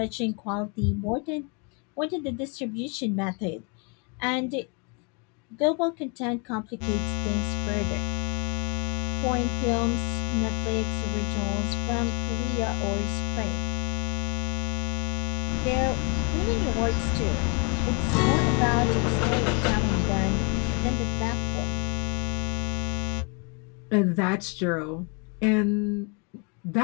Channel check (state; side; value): quieter; right; 34.4 dB